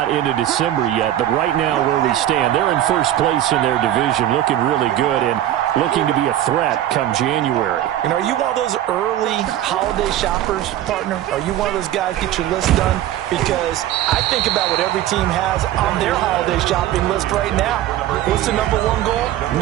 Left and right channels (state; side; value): quieter; left; 12.6 dB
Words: into December yet, but right now where we stand, they're in first place in their division, looking really good and looking to be a threat come January. And are you one of those early holiday shoppers, partner? Are you one of those guys get your list done? Because I think about what every team has on their holiday shopping list right now. What's the #1 goal?